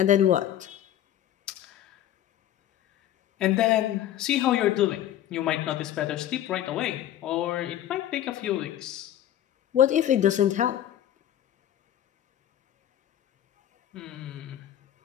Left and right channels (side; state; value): right; quieter; 11.7 dB